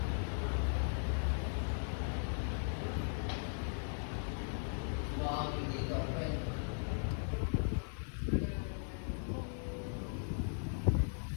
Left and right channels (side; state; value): right; silent; digital silence